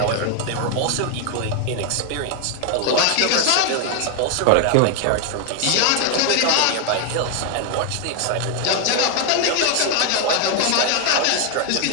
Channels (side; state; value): both; different; correlation 0.00